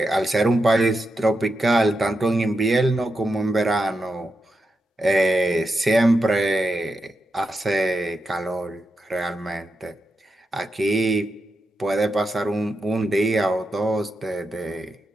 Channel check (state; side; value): normal; both; correlation 0.87